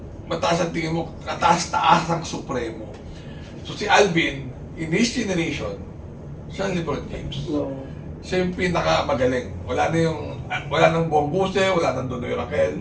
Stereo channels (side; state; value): both; identical; correlation 1.00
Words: mataas ang tingin mo, kataas-taas ang supremo. So, si Alvin, in his generation, siya ang LeBron James. No. Siya yung pinakamagaling. Wala nang Bong Guse, wala nang Donoy